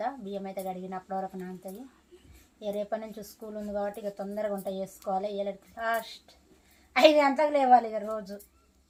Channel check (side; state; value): both; identical; correlation 1.00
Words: బియ్యం అయితే కడిగినప్పటి వరకు నానుతుంది. ఇక రేపటి నుంచి స్కూల్ ఉంది కాబట్టి ఇక తొందరగా వంట చేసుకోవాలి. లాస్ట్ 5 గంటలకు లేవాలి ఇక రోజు.